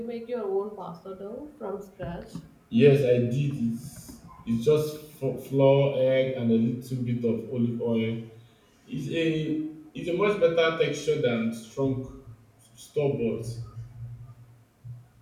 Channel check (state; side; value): identical; both; correlation 1.00